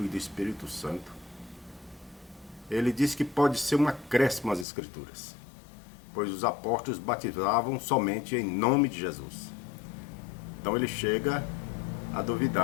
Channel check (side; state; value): right; drops out; at 4.7 s